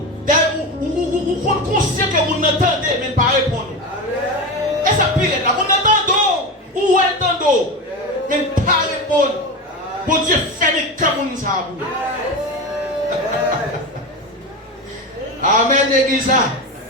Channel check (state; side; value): normal; both; correlation 0.22